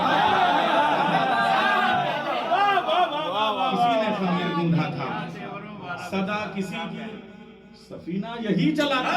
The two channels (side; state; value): both; identical; correlation 1.00